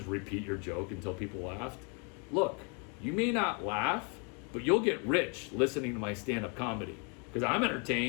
repeat your joke until people laughed? Look, you may not laugh, but you'll get rich listening to my stand-up comedy. Because I'm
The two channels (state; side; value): quieter; right; 35.6 dB